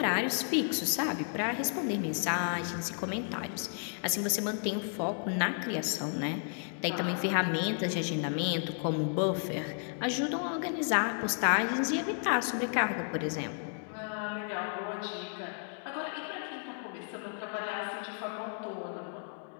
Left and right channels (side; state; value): right; silent; 56 dB below the other